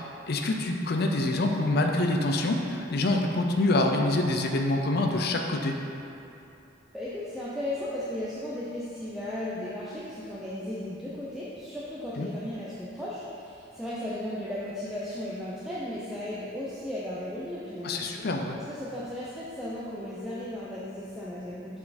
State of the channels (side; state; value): both; normal; correlation 0.54